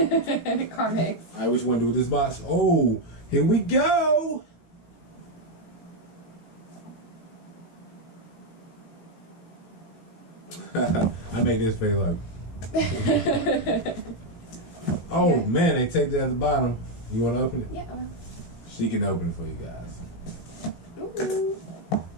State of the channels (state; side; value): late; right; 18 ms